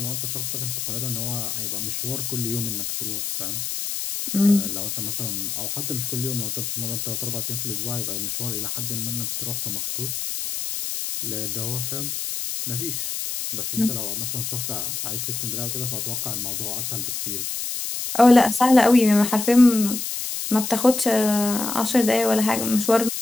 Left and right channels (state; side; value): noise; left; hiss, 4 dB below the sound